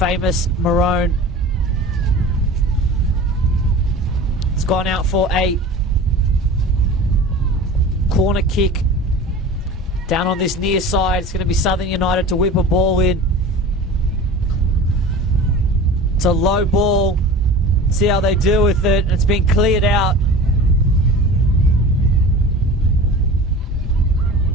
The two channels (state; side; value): normal; both; correlation 0.37